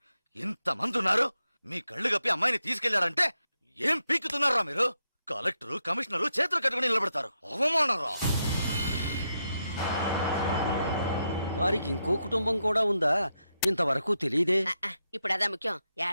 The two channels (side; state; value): both; inverted; correlation -0.84